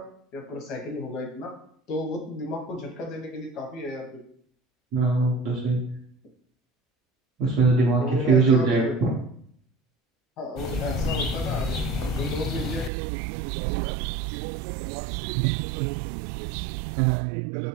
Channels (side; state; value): left; drops out; at 12.9 s